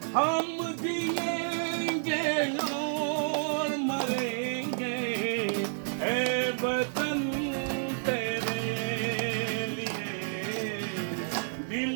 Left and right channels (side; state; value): left; silent; digital silence